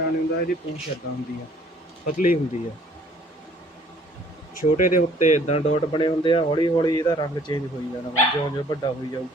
ਨਹੀਂ ਹੁੰਦਾ। ਇਹਦੀ ਪੂਛ ਇੱਦਾਂ ਹੁੰਦੀ ਆ, ਪਤਲੀ ਹੁੰਦੀ ਆ। ਛੋਟੇ ਦੇ ਉੱਤੇ ਇੱਦਾਂ ਡਾਟ ਬਣੇ ਹੁੰਦੇ ਆ। ਹੌਲੀ ਹੌਲੀ ਇਹਦਾ ਰੰਗ ਚੇਂਜ ਹੋਈ ਜਾਣਾ ਵਾ, ਜਿਉਂ ਜਿਉਂ ਵੱਡਾ ਹੋਈ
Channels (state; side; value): normal; both; correlation 0.58